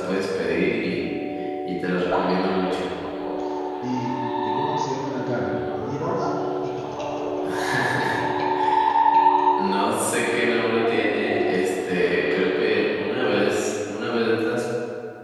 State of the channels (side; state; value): both; identical; correlation 1.00